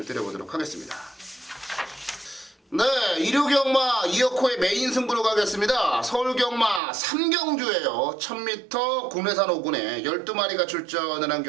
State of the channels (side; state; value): left; drops out; at 6.8 s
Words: 드려보도록 하겠습니다. 네, 일요경마 2억호의 메인 승부로 가겠습니다. 서울경마 3경주예요. 1000m 국내산 5군에 12마리가 출전을 한